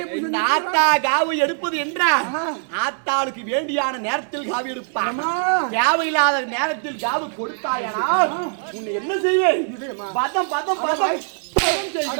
இந்த ஆத்தா காவு எடுப்பது என்றால் ஆத்தாளுக்கு வேண்டியான நேரத்தில் காவு எடுப்பான். தேவையில்லாத நேரத்தில் காவு கொடுத்தாயனால் உன்னை என்ன செய்வேன்? பதம் பதம் பதம்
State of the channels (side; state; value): left; silent; digital silence